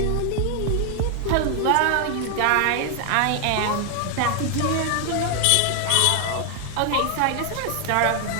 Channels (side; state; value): both; different; correlation 0.00